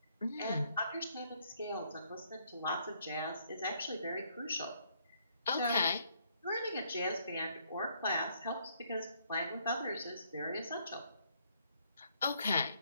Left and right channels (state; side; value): inverted; both; correlation -0.69